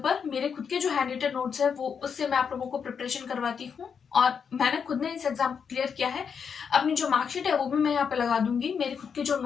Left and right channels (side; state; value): right; quieter; 6.6 dB